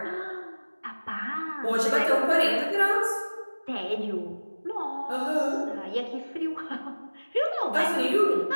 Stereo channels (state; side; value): inverted; both; correlation -1.00